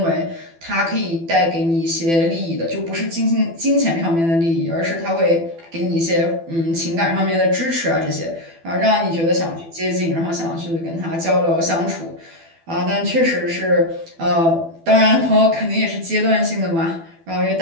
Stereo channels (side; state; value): left; late; 12 ms